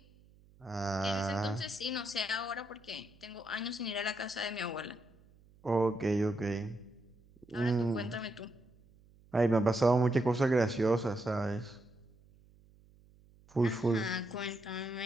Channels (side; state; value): right; noise; hum, 27 dB below the sound